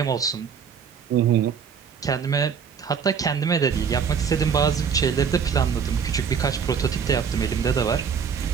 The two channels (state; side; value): quieter; left; 6.7 dB